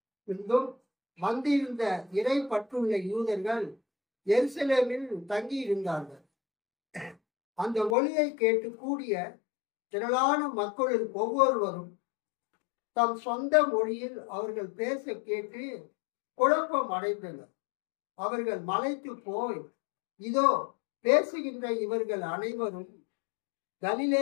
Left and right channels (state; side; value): drops out; right; at 8.0 s